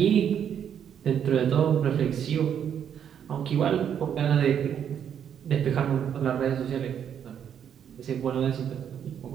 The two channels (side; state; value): left; quieter; 8.7 dB